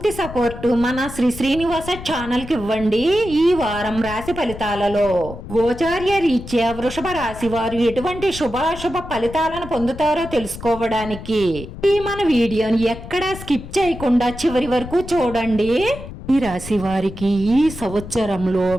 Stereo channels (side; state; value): left; noise; rumble, 12 dB below the sound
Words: సపోర్ట్ మన శ్రీనివాస ఛానల్ కి ఇవ్వండి. ఈ వారం రాశి ఫలితాలలో గోచార్య రీత్యా వృషభ రాశి వారు ఎటువంటి శుభాశుభ ఫలితాలను పొందుతారో తెలుసుకోవడానికి ఈ మన వీడియోని ఎక్కడా స్కిప్ చేయకుండా చివరి వరకు చూడండి. ఈ రాశి వారికి ఈ సంవత్సరంలో